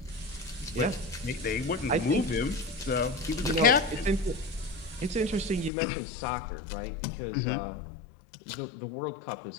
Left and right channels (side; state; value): right; drops out; at 5.7 s